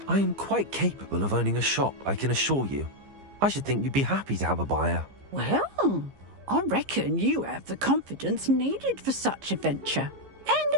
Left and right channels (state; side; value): late; left; 15 ms